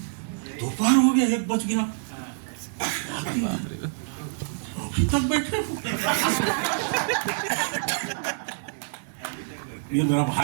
दोपहर हो गया, 1 बज गया, अभी तक बैठे। ये मेरा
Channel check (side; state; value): left; silent; digital silence